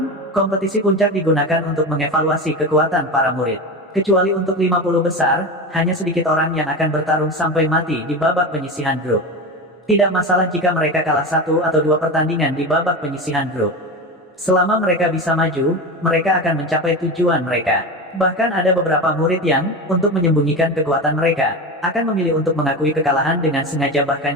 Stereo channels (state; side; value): normal; both; correlation 0.24